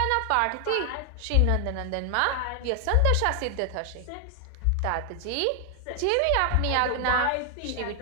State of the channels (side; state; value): both; different; correlation 0.00